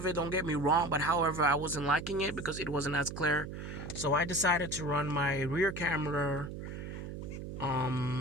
it, don't get me wrong, but however, I wasn't liking it because it wasn't as clear. So I decided to run my rear camera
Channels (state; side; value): noise; right; hum, 8 dB below the sound